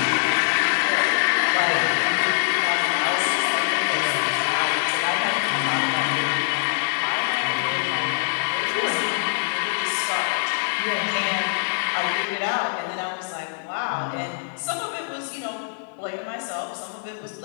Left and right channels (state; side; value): silent; right; digital silence